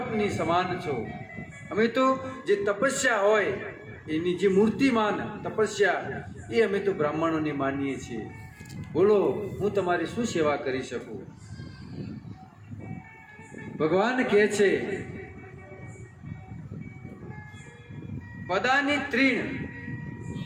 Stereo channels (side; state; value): both; identical; correlation 1.00